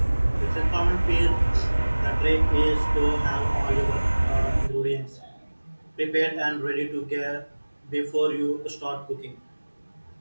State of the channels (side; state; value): both; inverted; correlation -1.00